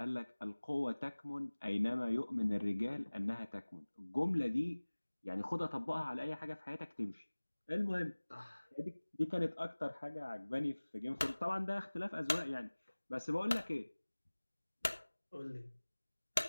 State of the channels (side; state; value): both; inverted; correlation -1.00